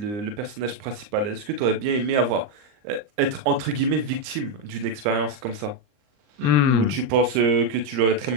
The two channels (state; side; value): late; left; 39 ms